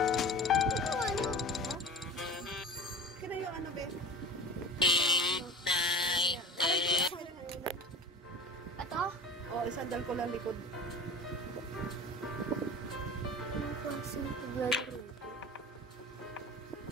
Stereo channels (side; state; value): both; normal; correlation 0.34